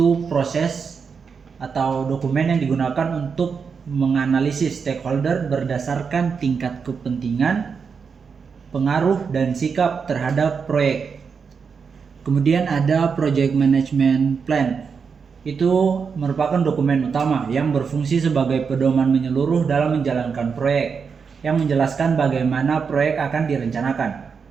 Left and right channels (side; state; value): left; quieter; 5.8 dB